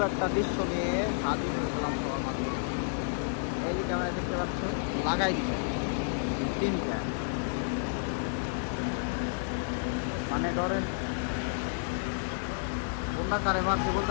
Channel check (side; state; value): right; silent; digital silence